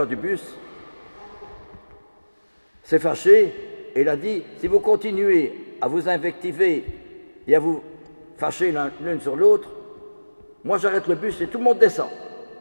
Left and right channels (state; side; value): inverted; both; correlation -1.00